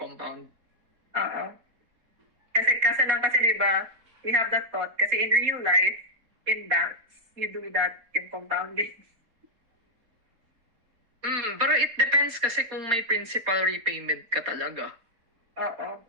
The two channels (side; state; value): left; late; 4.1 ms